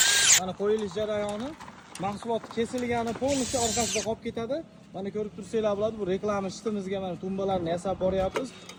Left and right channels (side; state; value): both; identical; correlation 1.00